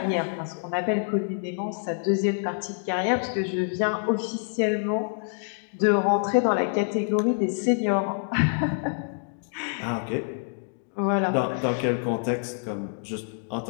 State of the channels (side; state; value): right; silent; digital silence